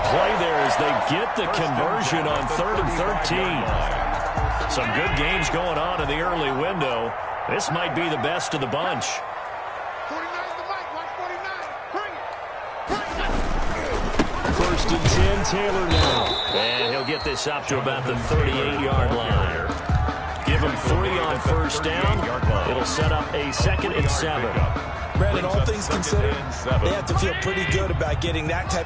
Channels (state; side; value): identical; both; correlation 1.00